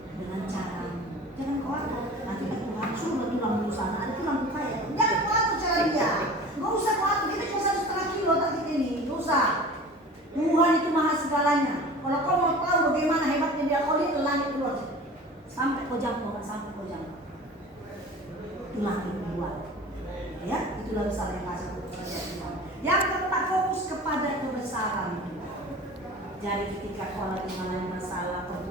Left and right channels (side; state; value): both; normal; correlation 0.39